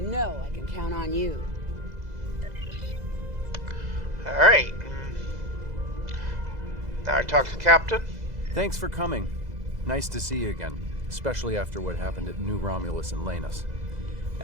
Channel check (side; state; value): left; late; 2.0 ms